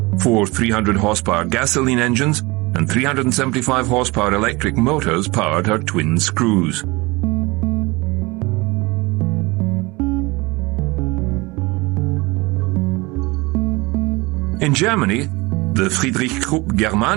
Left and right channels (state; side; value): quieter; left; 24.0 dB